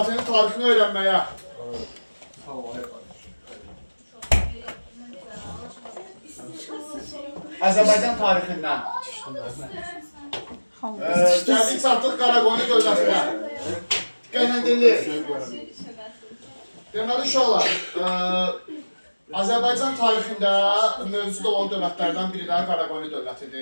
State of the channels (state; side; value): inverted; both; correlation -1.00